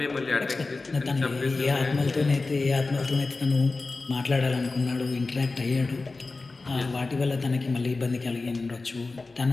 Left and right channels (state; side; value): quieter; right; 3.6 dB